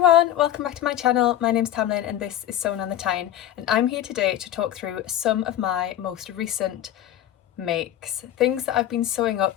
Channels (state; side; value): quieter; right; 12.0 dB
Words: welcome back to my channel. My name's Tamlyn and this is Sewn on the Tyne, and I'm here today to talk through some of my most recent makes, things that I've been sewing